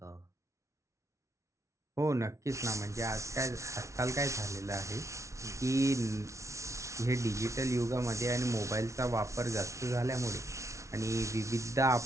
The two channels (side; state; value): left; late; 0.14 ms